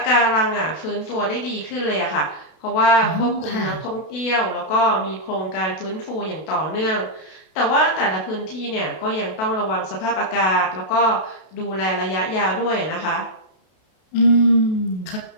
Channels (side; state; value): right; late; 32 ms